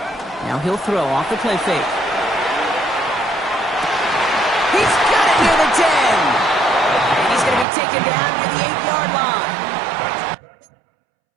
4. Now he'll throw off the play fake. He's got it near the 10. And he's going to be taken down near the 8-yard line.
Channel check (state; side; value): drops out; left; at 7.7 s